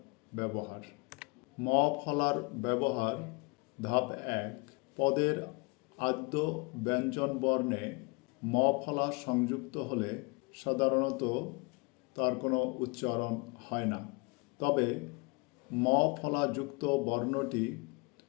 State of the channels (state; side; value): quieter; right; 28.3 dB